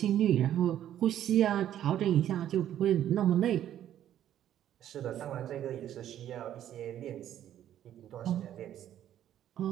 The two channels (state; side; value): quieter; left; 11.3 dB